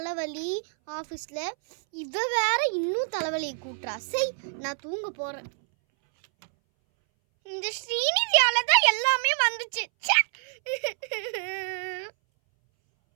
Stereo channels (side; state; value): left; silent; 60 dB below the other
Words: ஆஃபீஸில், இவ வேற இன்னும் தலைவலியை கூட்டுறா. சரி, நான் தூங்க போகிறேன். இந்த ஸ்ரீநிதியால தான் எல்லாமே வந்துச்சு.